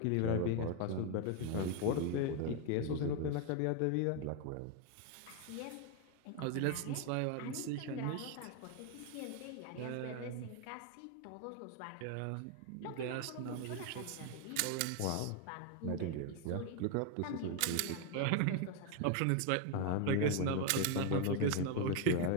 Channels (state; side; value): different; both; correlation 0.01